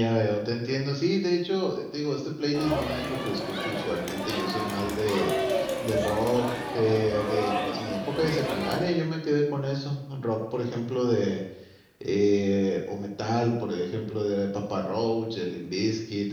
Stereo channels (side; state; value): both; identical; correlation 1.00